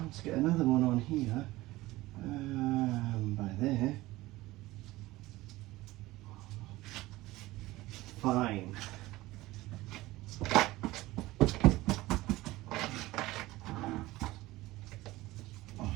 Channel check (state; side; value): quieter; left; 18.5 dB